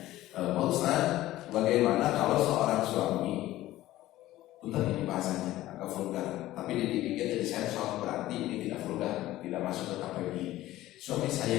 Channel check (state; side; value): quieter; right; 15.6 dB